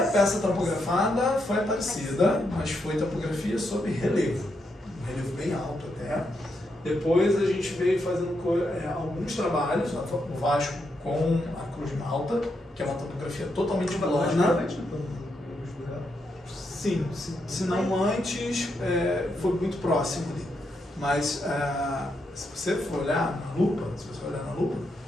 peça topografada foi a Aparecida, mas foi topografia sobre relevo. Um relevo bem alto até. Depois a gente veio fazendo alguns trabalhos, o Vasco com a Cruz de Malta, que é uma topografia totalmente plana. Sim, se não antes, foi muito próximo ali. Mas se você for olhar na lupa,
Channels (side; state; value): both; normal; correlation 0.81